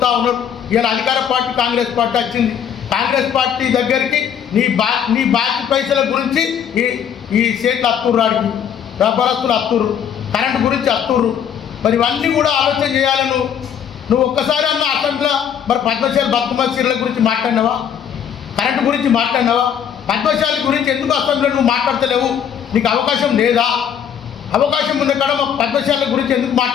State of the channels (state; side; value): quieter; right; 8.5 dB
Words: ఉన్నారు. ఇలా అధికార పార్టీ కాంగ్రెస్ పార్టీ వచ్చింది. కాంగ్రెస్ పార్టీ దగ్గరికి నీ బాకీ పైసల గురించి ఈ స్టేట్లు అత్తుర్రు, రాడికి వ్యాపారస్తులు అత్తుర్రు, కరెంటు గురించి అత్తుర్రు. మరి ఇవన్నీ కూడా ఆలోచన చేయాలి. నువ్వు ఒక్కసారి అన్న అసెంబ్లీలో మరి పద్మశాలి బతుకమ్మ చీరల గురించి మాట్లాడినావా? కరెంటు గురించి మాట్లాడినావా? పద్మశాలి గురించి ఎందుకు అసెంబ్లీలో నువ్వు మాట్లాడతలేవు? నీకు అవకాశం లేదా? అవకాశం ఉన్న కాడ పద్మశాల గురించి ఎందుకు